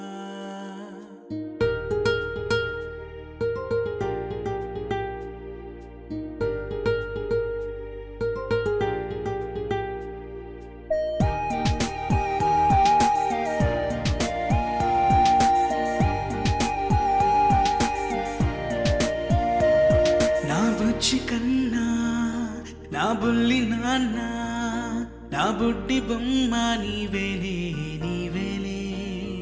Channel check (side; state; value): both; identical; correlation 1.00